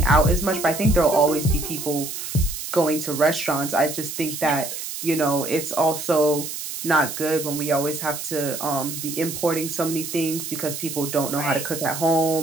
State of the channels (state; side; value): noise; right; hiss, 7 dB below the sound